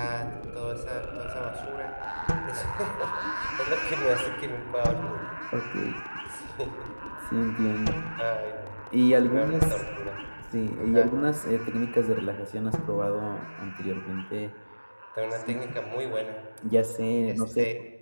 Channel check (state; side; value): inverted; both; correlation -1.00